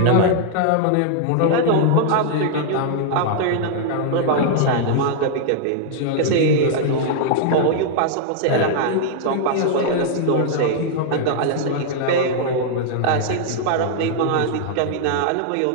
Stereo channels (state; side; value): different; both; correlation -0.01